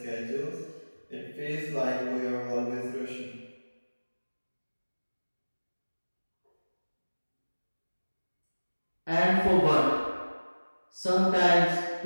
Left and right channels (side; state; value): both; inverted; correlation -1.00